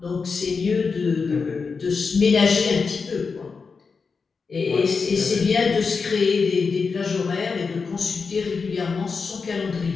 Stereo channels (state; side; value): quieter; right; 5.0 dB